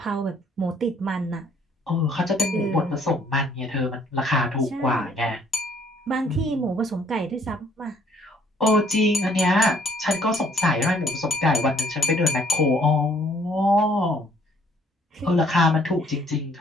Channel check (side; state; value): both; normal; correlation 0.62